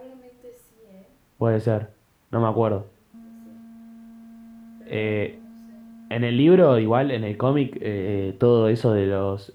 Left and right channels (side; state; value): both; identical; correlation 1.00